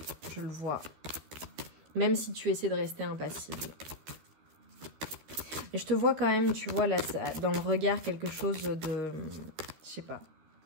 Je le vois. Même si tu essaies de rester impassible. Et je te vois quand même, tu vois, là, dans le regard, quelque chose de... Je sais pas.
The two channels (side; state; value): left; late; 13 ms